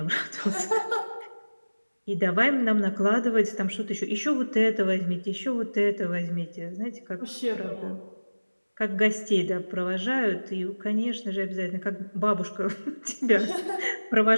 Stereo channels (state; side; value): inverted; both; correlation -1.00